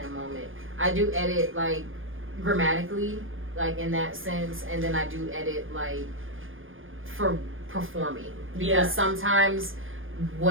moment. I do edit like grammatically, like in that sense, and then I do edit like for performing, because sometimes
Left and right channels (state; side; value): late; left; 0.59 ms